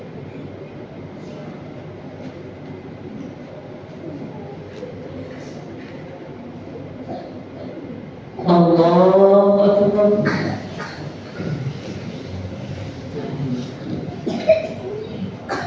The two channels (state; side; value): identical; both; correlation 1.00